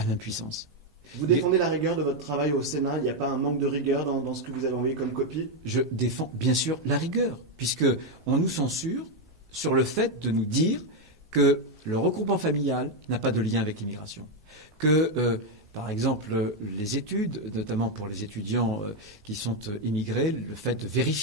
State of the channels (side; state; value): both; normal; correlation 0.04